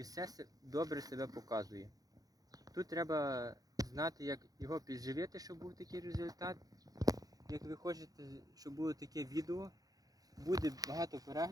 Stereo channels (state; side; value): late; left; 0.18 ms